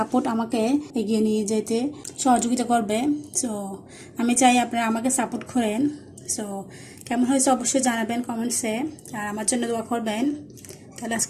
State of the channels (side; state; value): both; identical; correlation 1.00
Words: আমাকে এগিয়ে নিয়ে যেতে সহযোগিতা করবে। সো আমি চাই আপনারা আমাকে সাপোর্ট করেন। সো কেমন হয়েছে অবশ্যই জানাবেন কমেন্টসে, আর আমার জন্য দোয়া করবেন। তাহলে